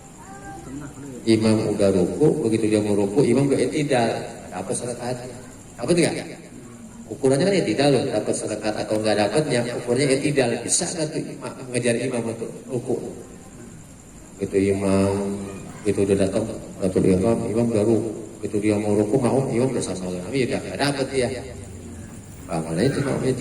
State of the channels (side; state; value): both; identical; correlation 1.00